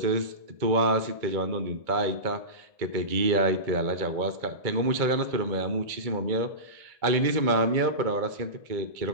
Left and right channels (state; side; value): late; left; 2.2 ms